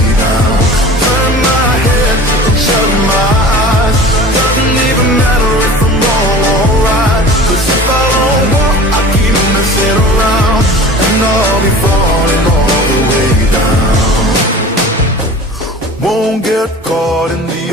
down. Turn my head and shut my eyes. Doesn't even matter if I'm wrong or right. Cause if I don't walk, I keep messing around, and I'll be falling all the way down. Won't get caught in the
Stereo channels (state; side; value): normal; both; correlation 0.40